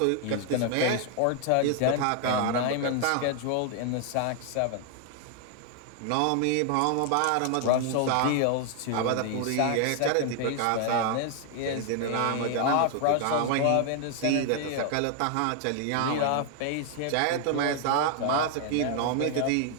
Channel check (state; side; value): different; both; correlation 0.00